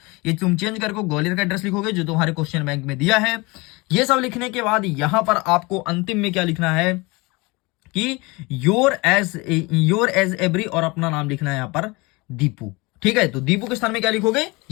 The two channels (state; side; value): quieter; right; 25.1 dB